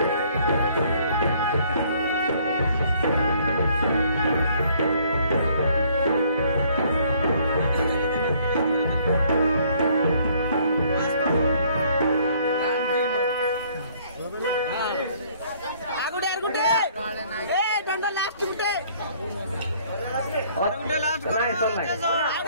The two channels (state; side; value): inverted; both; correlation -0.61